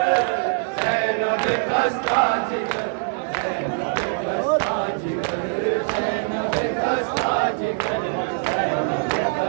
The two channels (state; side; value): silent; left; 64 dB below the other